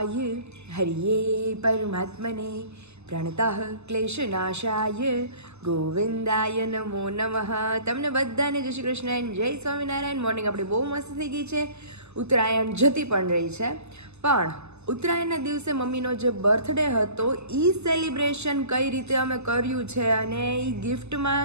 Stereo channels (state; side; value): late; left; 0.81 ms